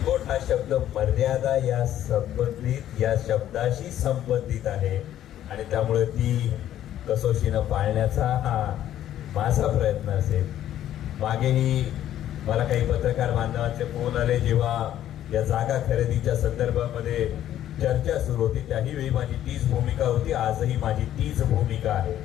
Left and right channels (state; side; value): quieter; right; 11.8 dB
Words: हा शब्द मर्यादा या संबंधित या शब्दाशी संबंधित आहे आणि त्यामुळे ती कसोशीनं पाळण्याचा हा माझा प्रयत्न असेल. मागेही मला काही पत्रकार बांधवांचे फोन आले जेव्हा या जागा खरेदीच्या संदर्भामध्ये चर्चा सुरू होती, त्याही वेळी माझी तीच भूमिका होती, आजही माझी तीच भूमिका आहे.